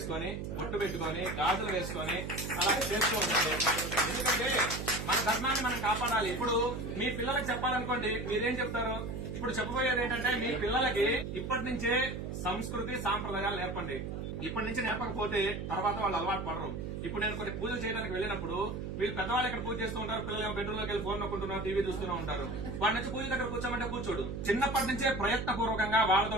బొట్టు పెట్టుకొని, గాజులు వేసుకొని అలా చేస్తూ ఉండాలి. ఎందుకంటే మన ధర్మాన్ని మనం కాపాడాలి. ఇప్పుడు మీ పిల్లలకు చెప్పాలనుకోండి, మీరేం చెప్తారు? ఇప్పుడు చెప్పబోయేది ఏంటంటే, మీ పిల్లలకి ఇప్పటి నుంచే సంస్కృతి సాంప్రదాయాలు నేర్పండి. ఇప్పటి నుంచి నేర్పకపోతే తర్వాత వాళ్ళు అలవాటు పడరు. ఇప్పుడు నేను కొన్ని పూజలు చేయడానికి వెళ్ళినప్పుడు వీళ్ళు పెద్దవాళ్ళు ఇక్కడ పూజ చేస్తూ ఉంటారు, పిల్లలు బెడ్రూమ్ లోకి వెళ్ళి ఫోన్ నొక్కుంటున్నారు, టీవీ చూస్తూనే ఉంటారు. వాడి నుంచి పూజ దగ్గర కూర్చోమంటే కూర్చోడు. చిన్నప్పటి నుంచే ప్రయత్నపూర్వకంగా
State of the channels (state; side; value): noise; right; hum, 5 dB below the sound